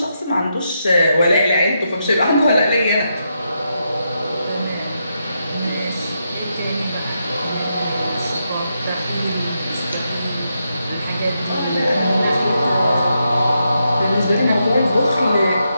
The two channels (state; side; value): inverted; both; correlation -0.83